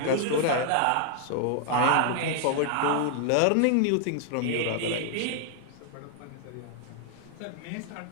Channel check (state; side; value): different; both; correlation 0.00